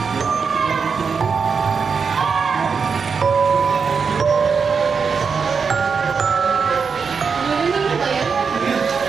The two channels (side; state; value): left; quieter; 5.6 dB